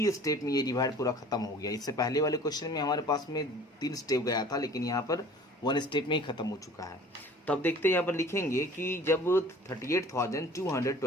स्टेप में ये डिवाइड पूरा खत्म हो गया। इससे पहले वाले क्वेश्चन में हमारे पास में 3 स्टेप गया था, लेकिन यहाँ पर 1 स्टेप में ही खत्म हो चुका है। तो अब देखते हैं यहाँ पर लिखेंगे कि जब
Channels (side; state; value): both; normal; correlation 0.47